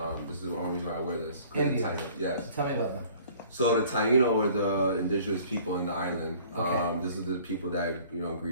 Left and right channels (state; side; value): inverted; both; correlation -0.52